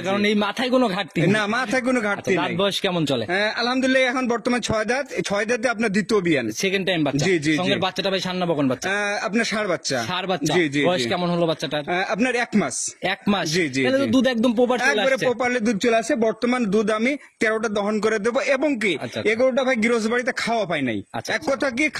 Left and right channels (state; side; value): identical; both; correlation 1.00